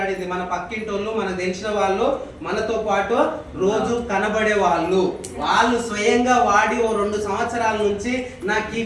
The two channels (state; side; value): identical; both; correlation 1.00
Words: మన పక్కింటోళ్ళు, మనకు తెలిసిన వాళ్ళు, మనతో పాటు రోజు కనబడే వాళ్ళు స్వయంగా వాడి 2 సంవత్సరాల నుంచి నాకు ఈ